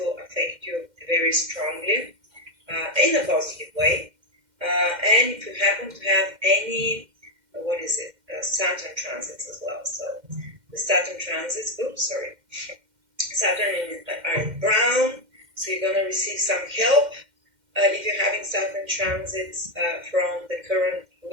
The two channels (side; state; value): left; late; 2.1 ms